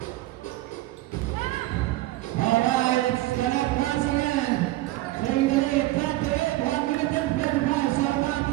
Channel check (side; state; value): left; quieter; 17.3 dB